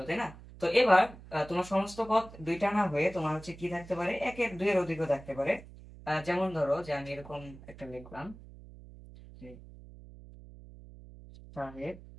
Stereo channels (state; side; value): noise; right; hum, 18 dB below the sound